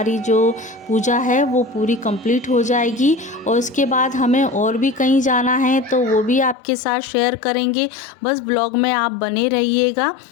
जो पूजा है वो पूरी कंप्लीट हो जाएगी। और उसके बाद हमें और भी कहीं जाना है तो वो भी आपके साथ शेयर करेंगे। बस ब्लॉग में आप बने रहिएगा।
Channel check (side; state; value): right; drops out; at 6.6 s